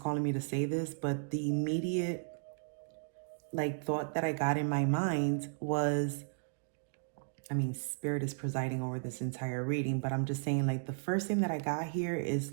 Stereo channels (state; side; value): silent; left; digital silence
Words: me to say this, but the immediate thought that I got in my mind was, I mean, Spirit is presiding over this entire reading, but I'm just saying, the first thing that I got here